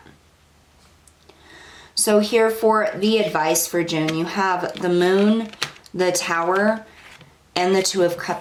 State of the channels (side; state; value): both; identical; correlation 1.00